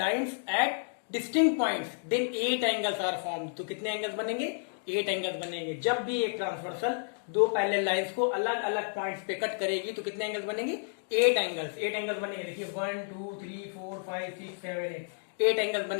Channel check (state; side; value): silent; right; digital silence